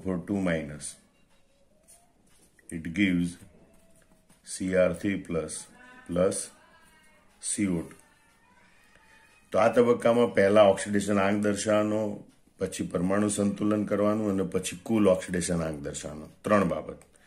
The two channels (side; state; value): both; identical; correlation 1.00